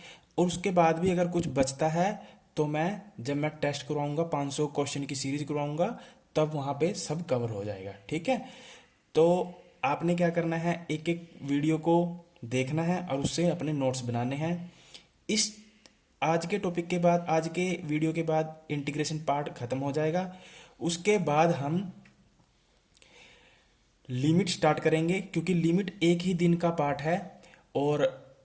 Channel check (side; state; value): both; identical; correlation 1.00